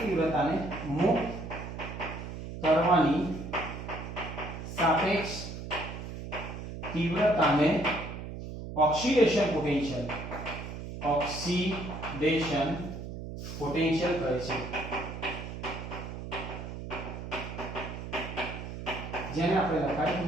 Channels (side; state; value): right; noise; hum, 8 dB below the sound